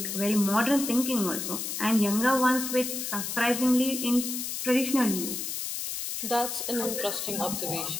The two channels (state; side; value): noise; left; hiss, 4 dB below the sound